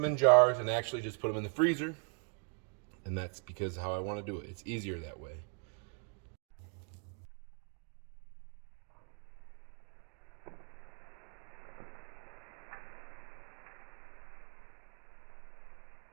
in jars and actually just put them in the freezer. And that's because how I want to do it. It's easier that way.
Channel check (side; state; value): left; quieter; 39.5 dB